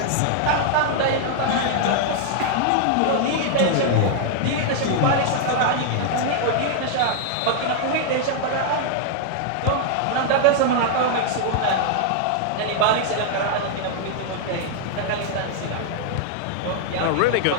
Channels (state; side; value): different; both; correlation 0.00